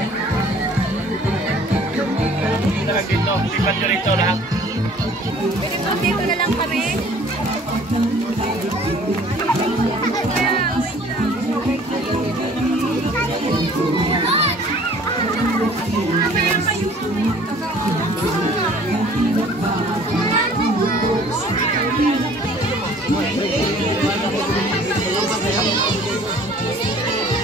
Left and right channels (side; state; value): both; normal; correlation 0.52